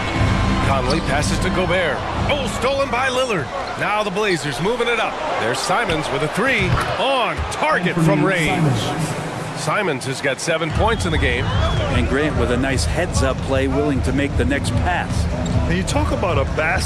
Conley passes to Gobert. Oh, stolen by Lillard. Now the Blazers moving it up. There's Simons with a 3 on target from range. Simons has got 7 points in the game. And Grant with a nice heads-up play, willing to make the next pass. And you talk about a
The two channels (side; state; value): both; identical; correlation 1.00